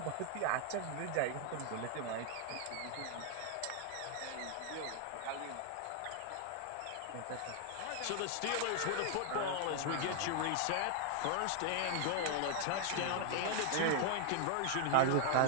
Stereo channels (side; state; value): both; different; correlation 0.00